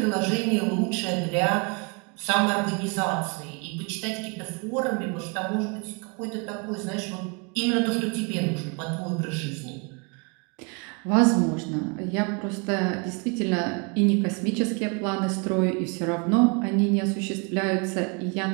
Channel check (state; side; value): quieter; left; 33.1 dB